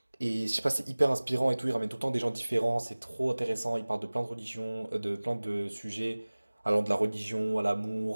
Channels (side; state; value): both; inverted; correlation -1.00